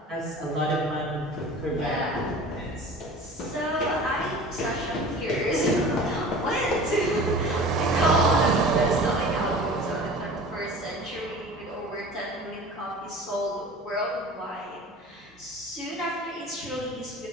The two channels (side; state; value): both; normal; correlation 0.41